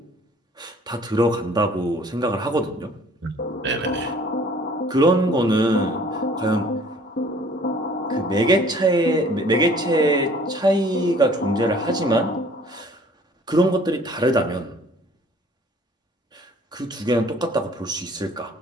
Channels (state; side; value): normal; both; correlation 0.54